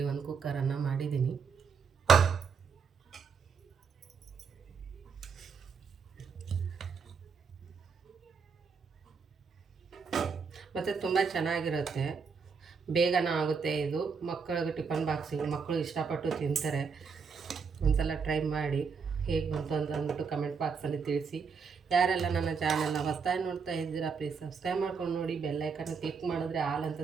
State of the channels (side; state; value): left; quieter; 5.7 dB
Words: ಒಂದು ಕುಕ್ಕರನ್ನು ಮಾಡಿದ್ದೀನಿ. ಮತ್ತು ತುಂಬ ಚೆನ್ನಾಗಿರುತ್ತೆ, ಬೇಗನ ಆಗುತ್ತೆ ಇದು. ಮಕ್ಕಳಿಗೆ ಟಿಫನ್ ಬಾಕ್ಸಿಗೆ ಮಕ್ಕಳು ಇಷ್ಟಪಟ್ಟು ತಿಂತಾರೆ. ಒಂದ್ಸಲ ಟ್ರೈ ಮಾಡಿ ಹೇಗೆ ಬಂತು ಅಂತ ಅಂದ್ಬಿಟ್ಟು ಕಮೆಂಟ್ ಬಾಕ್ಸಲ್ಲಿ ತಿಳಿಸಿ. ಯಾರೆಲ್ಲ ನನ್ನ ಚಾನಲ್ನ ಹೊಸದಾಗಿ ನೋಡ್ತಾ ಇದ್ದೀರಾ ಪ್ಲೀಸ್ ಸಬ್ಸ್ಕ್ರೈಬ್ ಮಾಡ್ಕೊಂಡು ನೋಡಿ. ಬೆಲ್ಲೈಕನ್ನ ಕ್ಲಿಕ್ ಮಾಡಿದ್ರೆ ಆಲ್ ಅಂತ